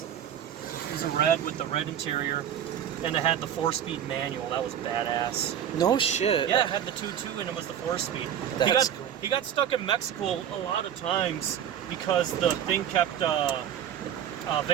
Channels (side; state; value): left; quieter; 9.7 dB